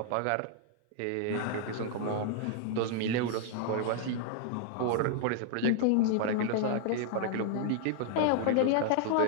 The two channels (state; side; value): different; both; correlation 0.00